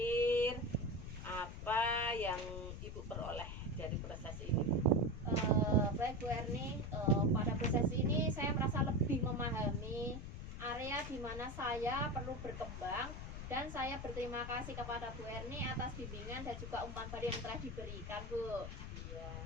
apa yang Ibu peroleh dari proses ini? Baik Bu Erni, pada proses ini saya merasa lebih memahami area di mana saya perlu berkembang dan saya berterima kasih kepada Bu Erni atas bimbingan dan juga umpan balik yang telah diberikan Bu. Iya,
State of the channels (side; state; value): left; noise; rumble, 8 dB below the sound